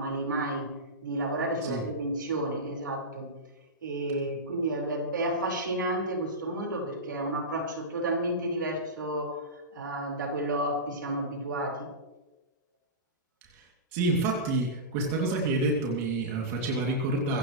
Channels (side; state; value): both; normal; correlation -0.17